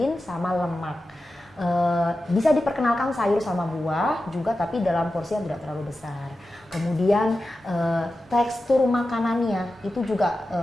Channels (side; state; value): both; normal; correlation 0.93